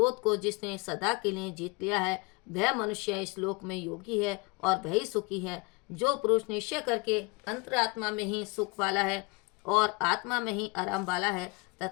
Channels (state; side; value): quieter; right; 27.3 dB